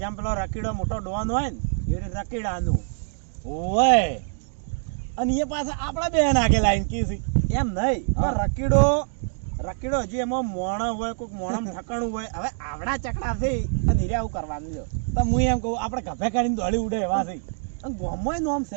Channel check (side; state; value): left; silent; 62 dB below the other